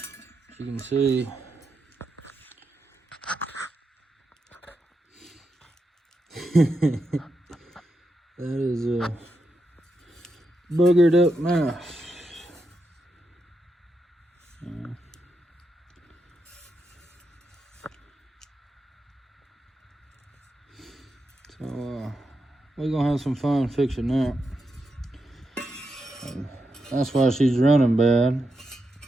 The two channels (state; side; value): normal; both; correlation 0.85